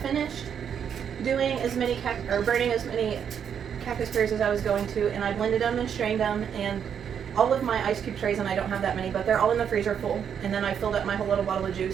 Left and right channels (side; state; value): left; quieter; 8.0 dB